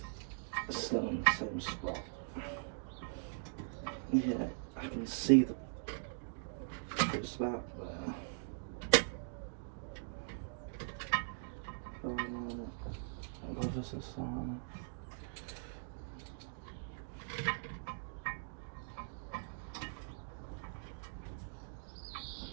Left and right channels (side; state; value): left; silent; digital silence